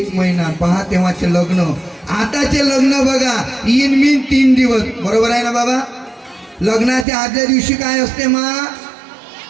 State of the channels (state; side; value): drops out; left; at 7.1 s